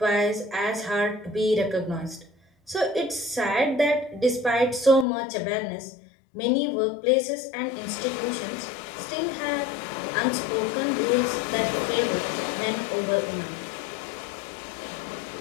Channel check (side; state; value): right; drops out; at 5.1 s